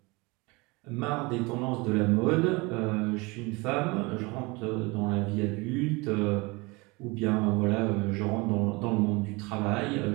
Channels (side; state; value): left; quieter; 25.6 dB